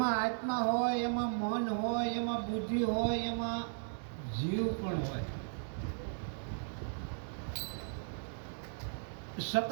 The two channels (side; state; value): left; silent; 54 dB below the other